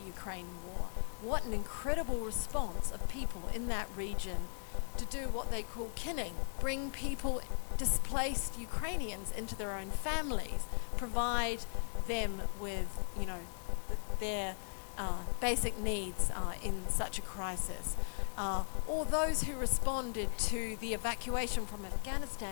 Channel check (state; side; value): silent; right; 53 dB below the other